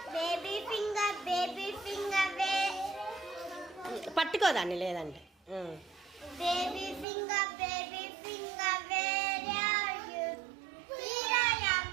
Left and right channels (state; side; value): drops out; left; at 7.1 s